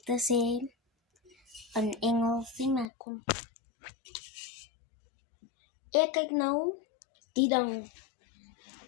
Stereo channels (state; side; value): drops out; right; at 2.9 s